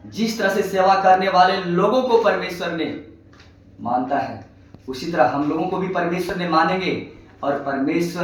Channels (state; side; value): identical; both; correlation 1.00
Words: जिस तरह से सेवा करने वाले लोगों को परमेश्वर ने मानता है, उसी तरह हम लोगों को भी परमेश्वर ने मानेंगे और